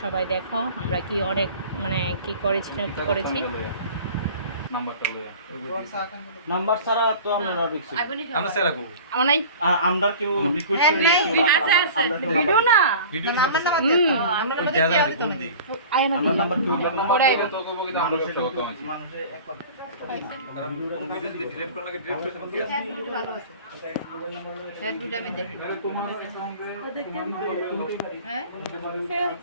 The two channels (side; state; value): both; inverted; correlation -0.41